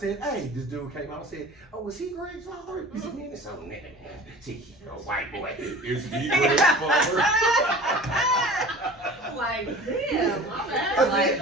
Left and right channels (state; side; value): normal; both; correlation 0.40